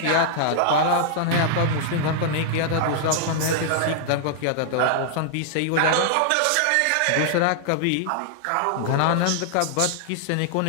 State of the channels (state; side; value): different; both; correlation -0.01